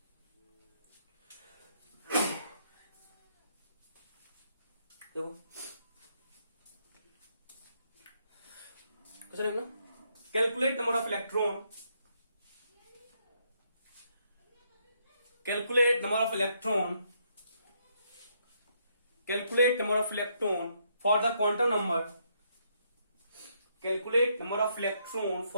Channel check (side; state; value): both; inverted; correlation -0.74